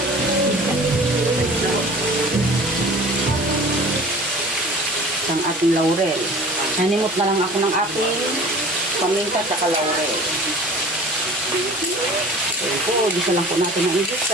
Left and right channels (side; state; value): both; normal; correlation 0.43